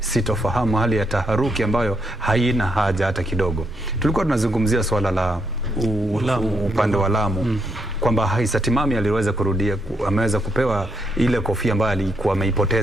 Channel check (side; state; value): right; noise; rumble, 23 dB below the sound